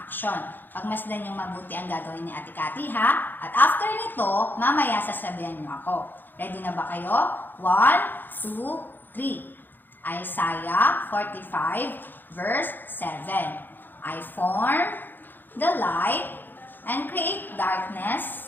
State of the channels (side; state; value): right; late; 0.092 ms